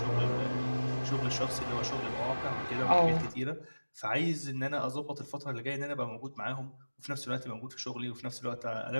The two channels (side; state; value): both; inverted; correlation -1.00